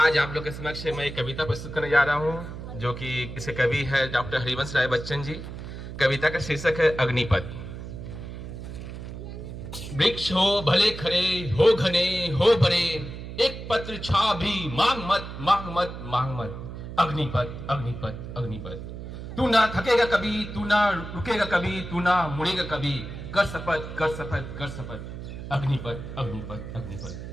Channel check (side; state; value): right; noise; hum, 9 dB below the sound